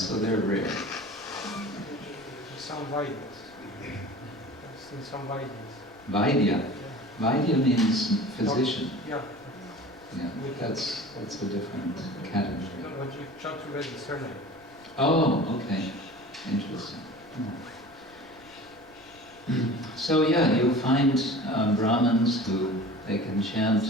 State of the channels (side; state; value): left; noise; rumble, 29 dB below the sound